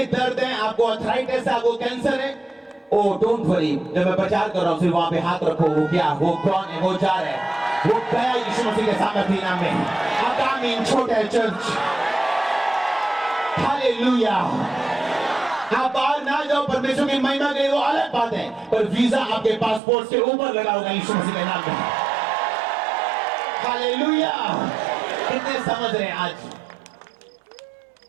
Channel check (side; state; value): left; drops out; at 19.8 s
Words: दर्द है, आपको अर्थराइटिस है, आपको कैंसर है, ओ डोंट वरी, जब मैं प्रचार कर रहा हूं सिर्फ वहां पे हाथ रखो, वो क्या, वो कौन है, वो जा रहा है, वो गया यीशु मसीह के सामर्थ्य नाम में। आगामी छोटा है चर्च। हालेलुया। आप बाहर ना जाओ परमेश्वर की महिमा के लिए, वो अलग बात है, पर वीजा आपके पासपोर्ट के ऊपर लगा होगा यीशु मसीह के नाम में। हालेलुया। कितने समझ रहे हैं? आज